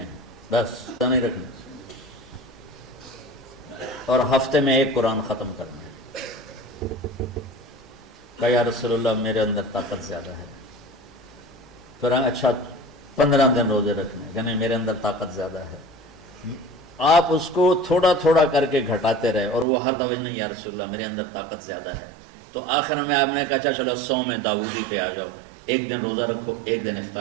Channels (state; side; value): drops out; left; at 19.7 s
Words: ہیں، بس نہیں رکھنے، اور ہفتے میں 1 قرآن ختم کرنا ہے۔ کہا یا رسول اللہ میرے اندر طاقت زیادہ ہے۔ پھر اچھا 15 دن روزے رکھنے، یعنی میرے اندر طاقت زیادہ ہے۔ آپ اس کو تھوڑا تھوڑا کر کے گھٹاتے رہے، اور وہ ہر دفعہ نہیں یا رسول اللہ میرے اندر طاقت زیادہ ہے۔ تو آخر میں آپ نے کہا اچھا چلو 100 میں داؤدی پہ آ جاؤ، 1 دن روزہ رکھو، 1 دن